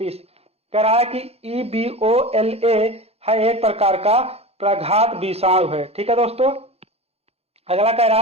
कह रहा है कि EBOLA है एक प्रकार का प्रघात विषाणु है। ठीक है दोस्तों। अगला कह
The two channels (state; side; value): late; left; 0.29 ms